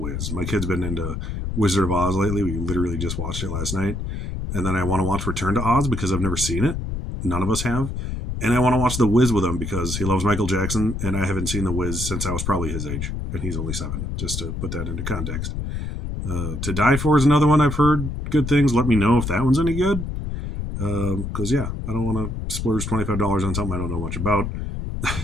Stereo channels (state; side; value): noise; left; rumble, 4 dB below the sound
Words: My kid's been into Wizard of Oz lately. We literally just watched it last night. And then I want to watch Return to Oz because I've never seen it. None of us have. And I want to watch The Wiz with him because he loves Michael Jackson, and I haven't seen The Wiz since I was probably his age, and he's only 7, just to put that into context. To Die For is another one I've heard good things. Let me know if that one's any good. Because, I don't want to splurge $25 on something I don't know much about.